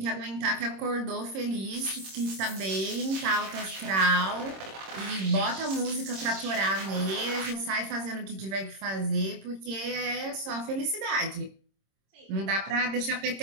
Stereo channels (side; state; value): left; late; 26 ms